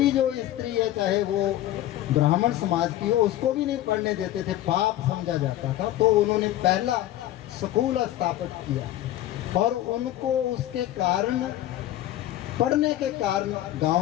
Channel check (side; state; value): right; quieter; 13.8 dB